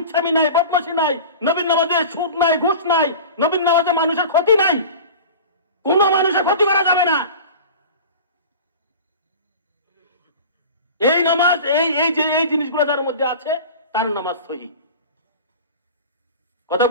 নাই, বদমাশি নাই, নবীর নামাজে সুদ নাই, ঘুষ নাই, নবীর নামাজে মানুষের ক্ষতি নাই, কোন মানুষের ক্ষতি করা যাবে না। এই নামাজ, এই জিনিসগুলো যার মধ্যে আছে তার নামাজ সহি। কথা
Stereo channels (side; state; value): both; inverted; correlation -0.36